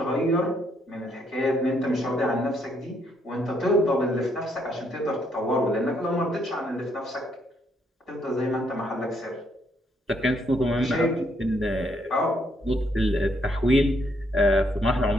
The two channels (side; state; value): both; normal; correlation 0.72